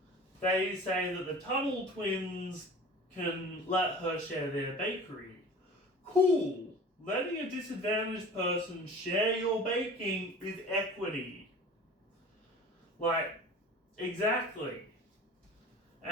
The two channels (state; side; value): normal; both; correlation 0.41